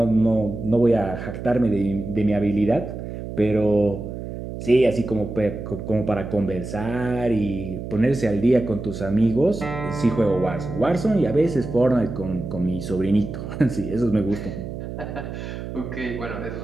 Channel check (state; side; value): noise; right; hum, 8 dB below the sound